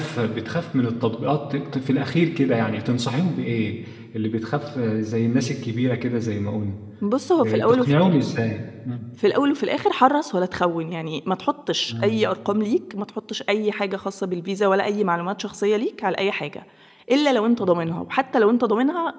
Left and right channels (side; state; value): both; identical; correlation 1.00